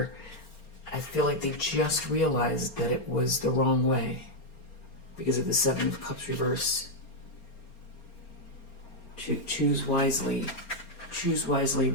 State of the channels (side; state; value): right; late; 4.4 ms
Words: I feel like they just realized that it was the wrong way because of the Seven of Cups reverse. Choose wisely. choose wisely